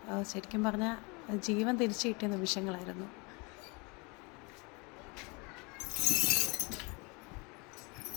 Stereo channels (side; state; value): right; quieter; 29.3 dB